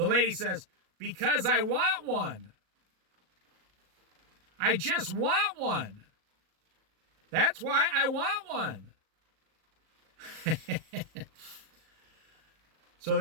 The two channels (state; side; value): late; left; 37 ms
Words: lady says, because I want one. I just want one. That's why I want one. So